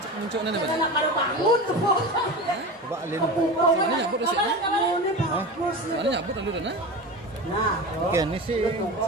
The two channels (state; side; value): normal; both; correlation 0.28